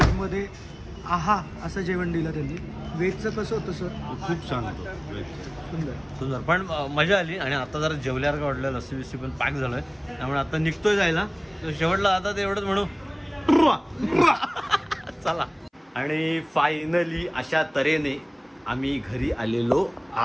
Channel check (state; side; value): identical; both; correlation 1.00